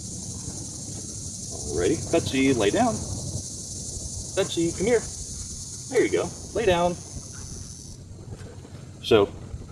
Alrighty. Betsy, lay down. Betsy, come here. There you go. Lay down. So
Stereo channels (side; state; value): both; identical; correlation 1.00